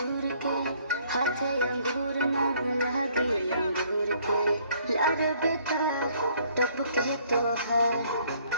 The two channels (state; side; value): inverted; both; correlation -0.62